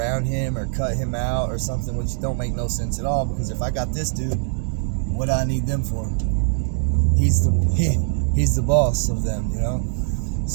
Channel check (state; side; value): silent; left; 64 dB below the other